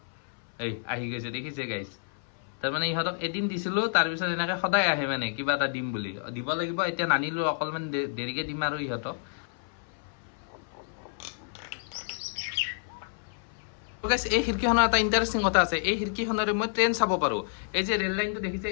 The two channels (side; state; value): right; silent; 57 dB below the other